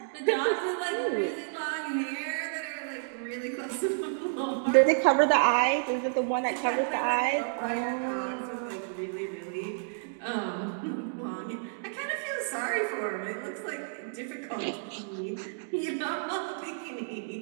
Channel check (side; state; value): left; silent; digital silence